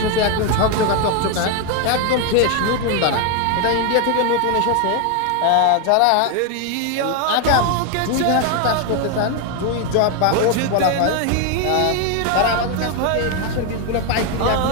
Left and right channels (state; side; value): different; both; correlation 0.01